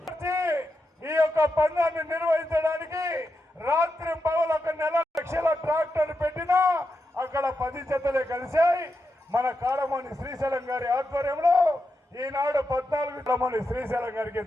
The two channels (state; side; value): normal; both; correlation 0.86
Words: యొక్క పందాన్ని నిర్వహించడానికి రాత్రి పగలు 1 నెల లక్షల ట్రాక్టర్ పెట్టినా అక్కడ 10 జతలే కలిశాయి. మన కాడమోని శ్రీశైలం గారి ఆధ్వర్యంలో ఈనాడు 14 కాడమోని శ్రీశైలం గారికి